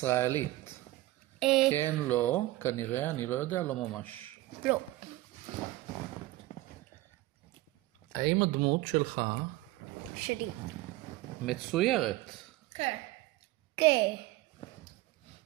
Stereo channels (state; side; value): quieter; left; 17.6 dB